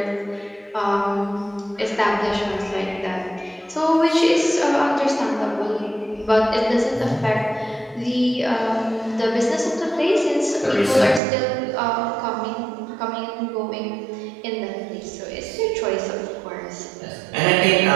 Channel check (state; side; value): drops out; left; at 11.2 s